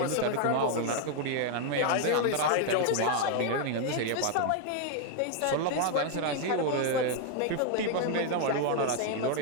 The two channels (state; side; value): different; both; correlation 0.00